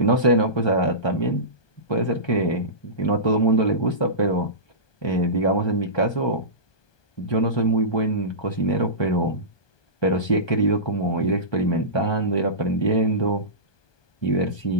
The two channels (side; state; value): right; late; 1.2 ms